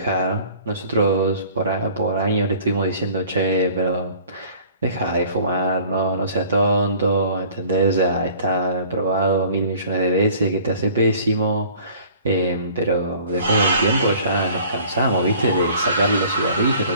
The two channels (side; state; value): both; inverted; correlation -0.51